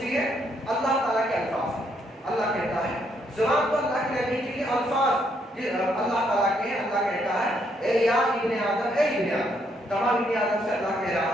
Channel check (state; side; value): normal; both; correlation 0.73